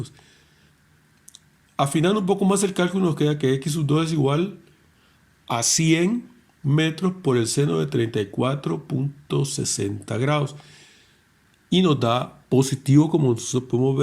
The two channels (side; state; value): both; identical; correlation 1.00